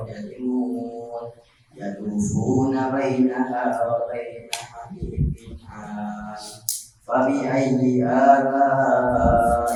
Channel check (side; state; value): both; identical; correlation 1.00